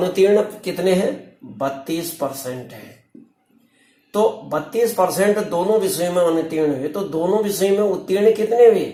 कितने हैं? 32% है। तो 32% दोनों विषयों में अनुत्तीर्ण हुए, तो दोनों विषयों में उत्तीर्ण कितने हुए?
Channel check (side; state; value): both; identical; correlation 1.00